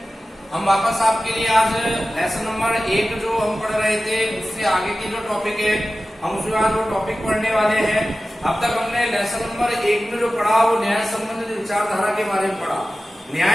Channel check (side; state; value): both; normal; correlation 0.95